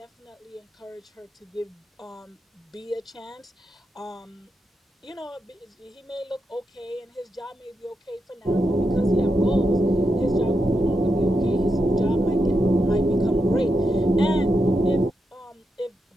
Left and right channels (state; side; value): normal; both; correlation 0.85